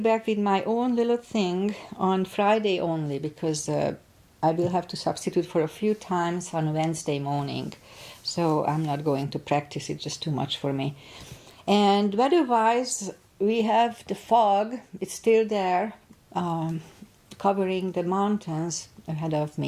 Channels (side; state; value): both; identical; correlation 1.00